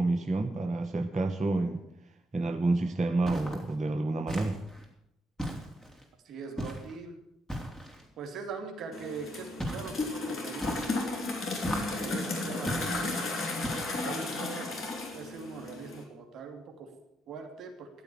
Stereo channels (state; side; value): normal; both; correlation 0.80